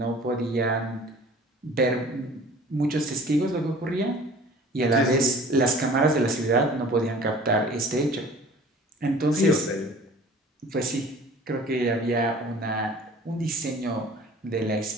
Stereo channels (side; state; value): both; normal; correlation 0.47